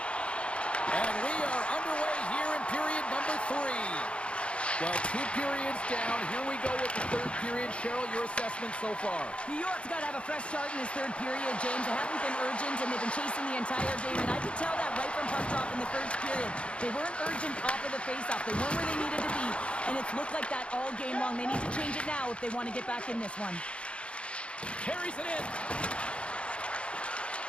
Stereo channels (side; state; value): right; late; 0.059 ms